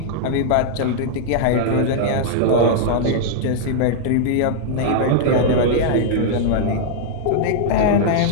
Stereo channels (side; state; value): both; different; correlation -0.01